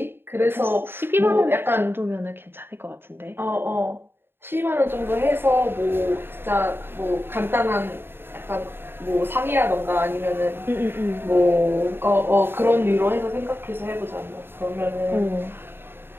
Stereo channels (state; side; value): late; left; 0.11 ms